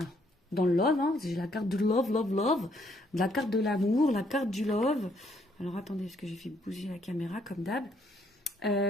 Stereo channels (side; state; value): both; normal; correlation 0.69